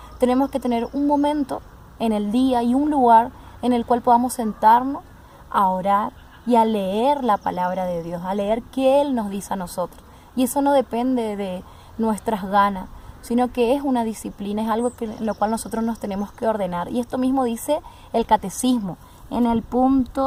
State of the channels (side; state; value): both; identical; correlation 1.00